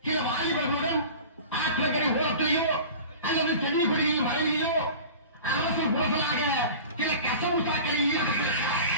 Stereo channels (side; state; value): both; inverted; correlation -0.38